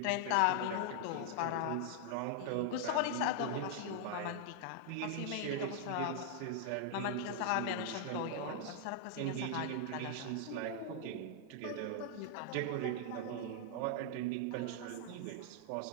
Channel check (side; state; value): both; different; correlation -0.01